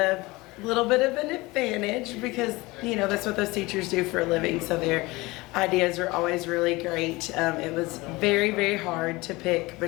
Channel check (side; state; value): right; quieter; 22.0 dB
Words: little bit of an advantage because, you know, that's what those teachers do for a living, so their ideas are always really great. It was very, very hard to pick